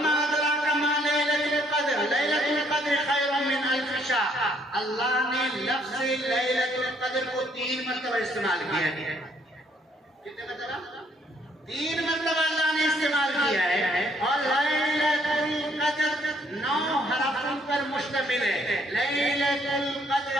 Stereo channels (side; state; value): both; normal; correlation 0.67